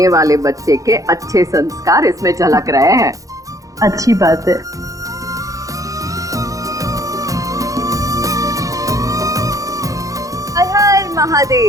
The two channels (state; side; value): late; left; 0.16 ms